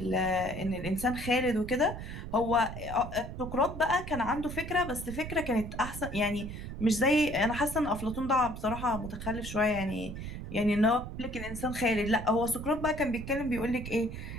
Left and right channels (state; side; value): noise; right; rumble, 8 dB below the sound